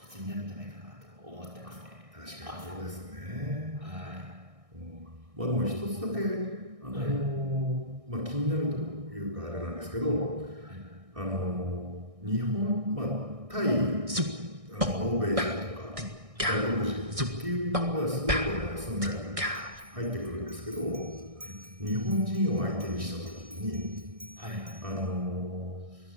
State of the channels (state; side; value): late; left; 1.6 ms